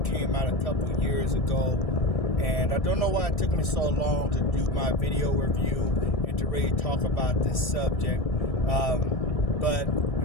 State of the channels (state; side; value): late; right; 1.6 ms